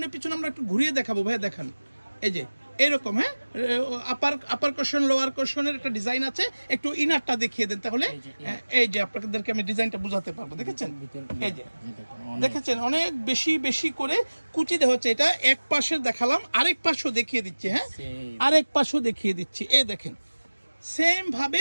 পিছনে আমরা একটু ঘুরিয়ে দেখাবো। ভাইয়া দেখান, এই যে এরকম। হ্যাঁ, আপার কোশন লোয়ার কোশনের একটা ডিজাইন আছে। একটু ইনারটা দেখিয়ে দেন তাহলে। এই যে আপনাদেরকে আমি ডিজাইনটা বুঝাতে পারবো। দেখেছেন, এই যে দেখেছেন অনেক বেশি বেশি করে কুচি দেওয়া হচ্ছে। এটা এক পাশে দেখালাম, আরেক পাশও দেখিয়ে দিচ্ছি। হ্যাঁ, আরেক পাশও দেখিয়ে দিচ্ছি। এই দেখেন সেম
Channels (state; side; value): inverted; both; correlation -1.00